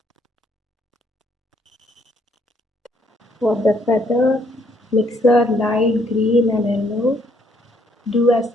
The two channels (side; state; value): both; normal; correlation 0.68